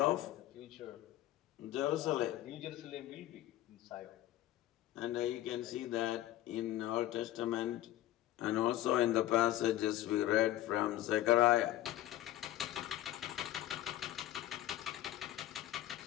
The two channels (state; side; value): quieter; right; 14.2 dB